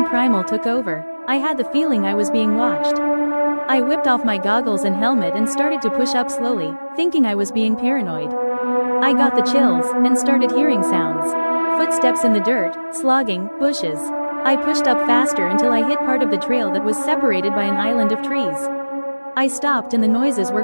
primal took over. I had the feeling I was being watched. I whipped off my goggles and helmet and started to push up slowly, thinking I was being paranoid. I got the chills and started hearing sounds. Footsteps in the dirt, slogging, bushes. I pushed up faster until I hit part of the trail that was separated by an island of trees. I stopped and the noises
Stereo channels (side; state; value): both; inverted; correlation -1.00